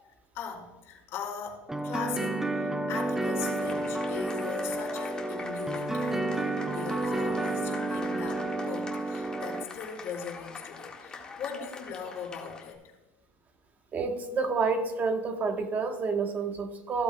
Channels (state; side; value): normal; both; correlation 0.69